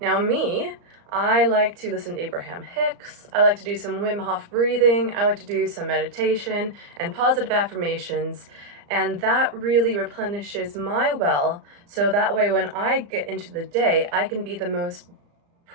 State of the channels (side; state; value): left; late; 35 ms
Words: me, I like to listen to Abraham Hicks, I like to do some Wim Hof breathing, I like to do some meditation and positive affirmations, And that really replenishes my well, so that way when I get into the day, I can be the most